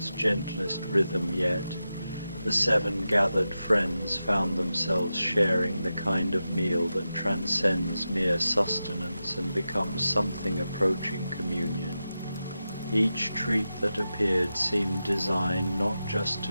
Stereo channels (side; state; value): both; inverted; correlation -0.91